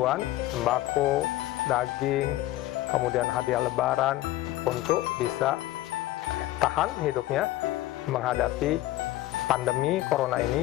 sembako, daging, kemudian hadiah Lebaran untuk bisa tahan hidupnya menghadapi pandemi corona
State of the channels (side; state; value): right; quieter; 15.9 dB